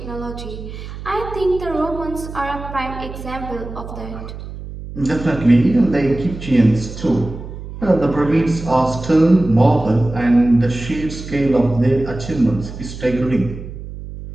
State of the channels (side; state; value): right; noise; hum, 11 dB below the sound